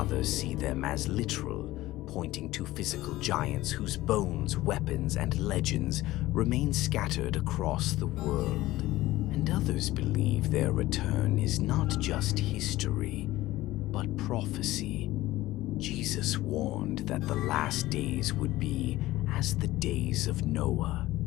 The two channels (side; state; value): right; quieter; 17.0 dB